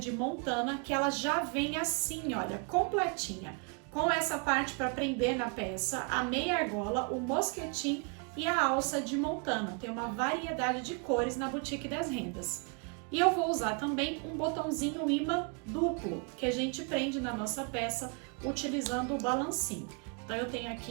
Montana, que ela já vem assim, olha, completinha. Com essa parte para prender na peça, a meia argola, o mosquetim e a alça de Montana. Tem uma variedade de cores na Boutique das Rendas. E eu vou usar também um botãozinho imã duplo, que a gente prende na nossa peça utilizando o balancinho. Então eu tenho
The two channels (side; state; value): left; quieter; 36.2 dB